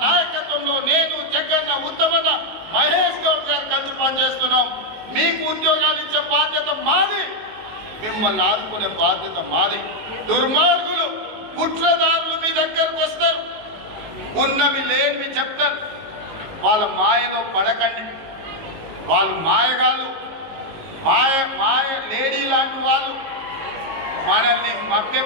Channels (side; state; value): left; late; 18 ms